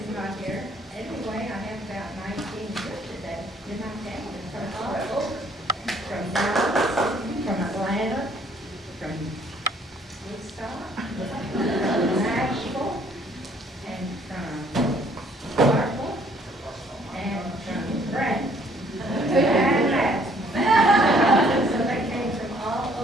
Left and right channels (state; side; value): normal; both; correlation 0.62